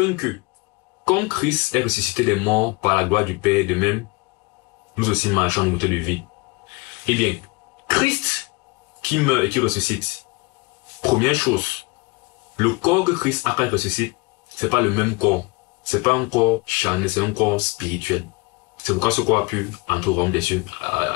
que, comme Christ est ressuscité des morts par la gloire du Père, de même, nous aussi marchons en nouveauté de vie. Eh bien, Christ qui meurt et qui ressuscite, première chose, le corps que Christ a quand il ressuscite, c'est pas le même corps. C'est pas un corps charnel, c'est un corps spirituel. C'est pourquoi ce corps a pu entrer au royaume des cieux,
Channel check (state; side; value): quieter; right; 27.3 dB